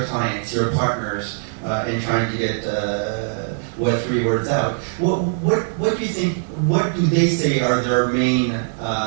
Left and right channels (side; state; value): left; silent; digital silence